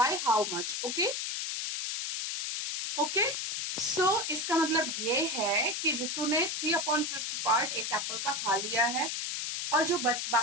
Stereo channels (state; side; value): noise; left; hiss, 3 dB below the sound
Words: how much? Okay? Okay? So, इसका मतलब ये है कि रितु ने 3/5 part एक Apple का खा लिया है और जो